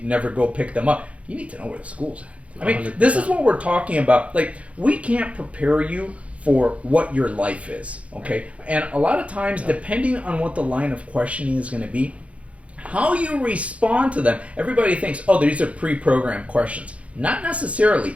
never go pick them up. You need to know where the school's at. I mean, 100%. this is what we're talking about. Like, we can't prepare you for what your life is, okay? And a lot of times, depending on what the line of questioning is going to be, how you respond to them, everybody thinks, oh, these are pre-programmed questions. Not necessarily.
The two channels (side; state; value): left; late; 0.064 ms